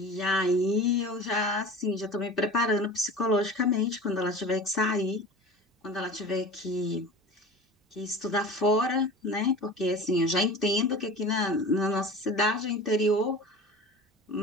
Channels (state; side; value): normal; both; correlation 0.36